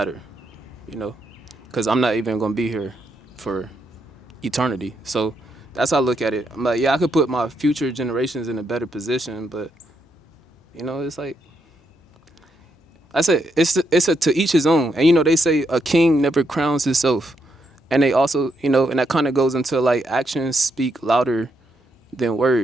You know, because I'm not even gonna be here for eternity. So that's how I look at it. I'm like, yeah, I could put my future generations in a better position, but you know, it's like, I said, it's a to each his own. And you know, they say a king never crowns himself. And they also, you know, and that kind of goes into like actions speak louder than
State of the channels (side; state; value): both; normal; correlation 0.79